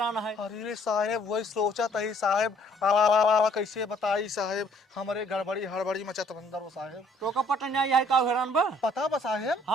है? अरे साहेब वही सोचा था ही साहेब, कैसे बताई साहेब, हमारे गड़बड़ी हड़बड़ी मचा अंदर वो साहेब। तो का पता नहीं है का हैरान बा? पता बा साहेब?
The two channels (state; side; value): normal; both; correlation 0.61